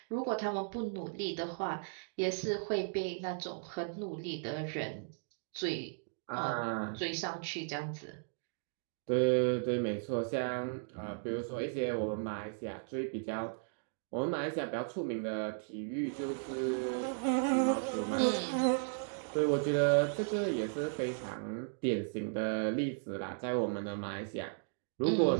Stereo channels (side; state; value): left; silent; digital silence